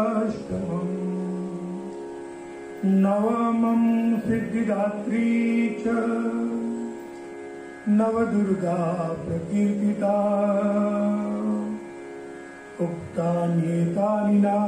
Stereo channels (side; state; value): both; identical; correlation 1.00